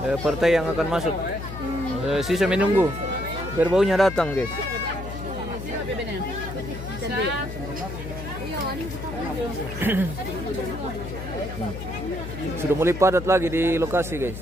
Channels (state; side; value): noise; left; hum, 9 dB below the sound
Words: partai yang akan masuk. Sisa menunggu, berbaunya datang guys. Sudah mulai padat lagi di lokasi guys.